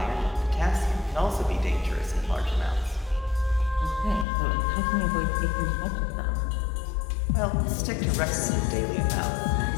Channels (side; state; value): right; drops out; at 4.2 s